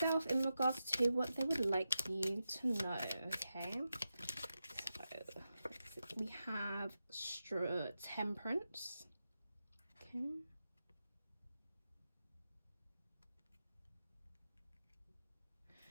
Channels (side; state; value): both; inverted; correlation -0.89